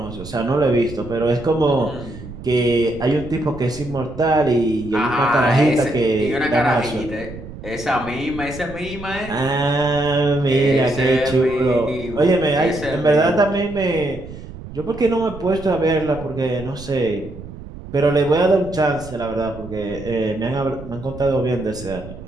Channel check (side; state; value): right; noise; rumble, 14 dB below the sound